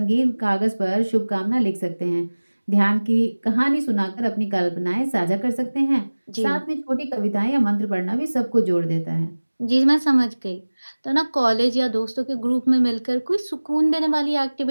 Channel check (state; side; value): inverted; both; correlation -1.00